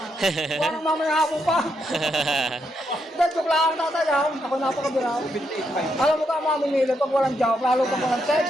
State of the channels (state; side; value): normal; both; correlation 0.80